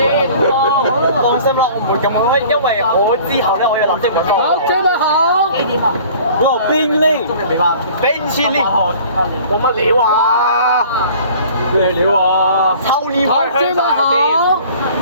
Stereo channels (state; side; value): inverted; both; correlation -0.48